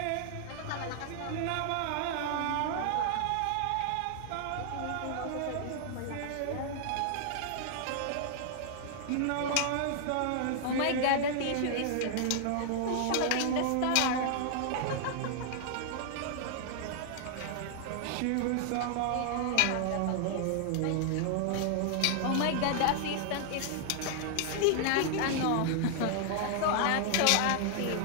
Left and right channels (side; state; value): both; different; correlation 0.00